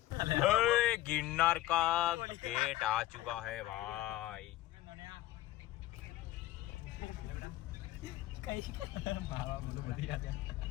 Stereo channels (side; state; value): right; quieter; 15.4 dB